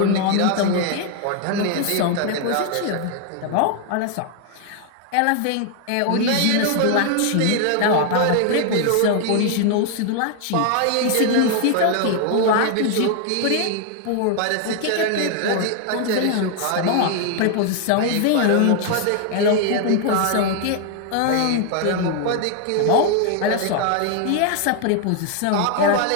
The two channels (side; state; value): both; different; correlation 0.00